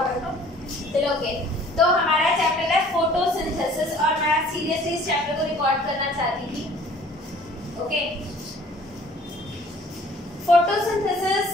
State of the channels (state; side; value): normal; both; correlation 0.52